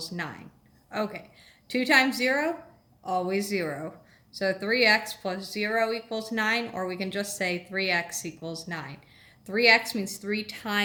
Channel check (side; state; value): both; identical; correlation 1.00